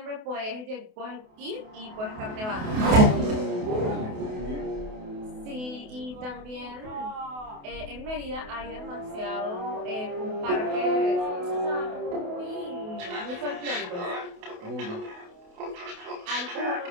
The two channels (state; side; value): late; left; 28 ms